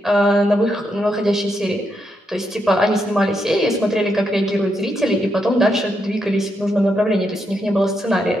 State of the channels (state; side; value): normal; both; correlation 0.81